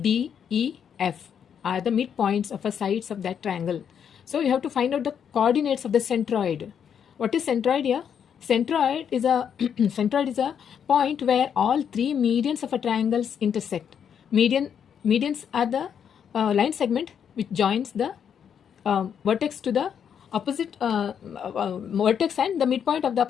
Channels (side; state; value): right; quieter; 8.0 dB